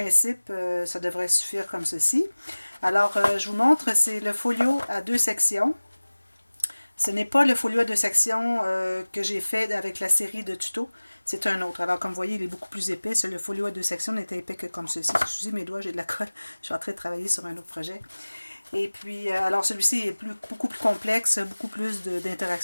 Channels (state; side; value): inverted; both; correlation -1.00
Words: ça devrait suffire comme ceci. Alors, je vous montre, c'est le folio à deux sections. Ce n'est pas le folio à deux sections que j'ai fait avec la série de tutos, c'est un autre. Alors, comme vous voyez, il est beaucoup plus épais. Le folio à deux sections n'était épais que comme ceci. Excusez mes doigts, j'ai de la colle. Je suis en train de travailler sur un autre projet. Et puis, alors celui-ci est beaucoup plus complexe, beaucoup plus